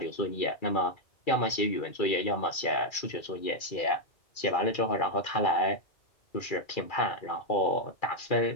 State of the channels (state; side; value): late; right; 2.3 ms